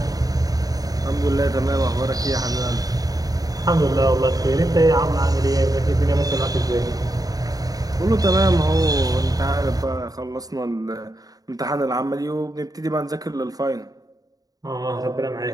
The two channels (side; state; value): left; late; 0.18 ms